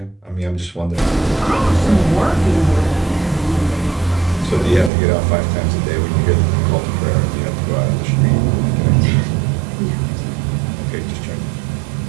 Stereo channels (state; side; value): drops out; left; at 4.9 s